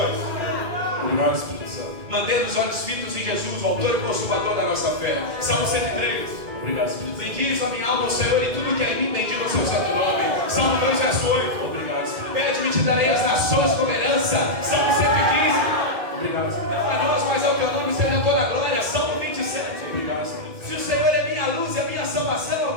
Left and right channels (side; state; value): left; late; 2.2 ms